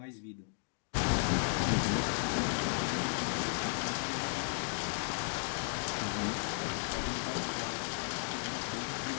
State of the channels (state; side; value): silent; right; digital silence